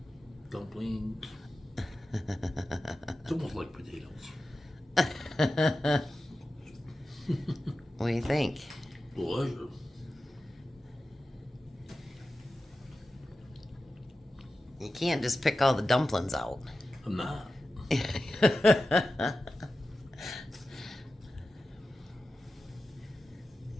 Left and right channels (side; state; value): both; normal; correlation 0.93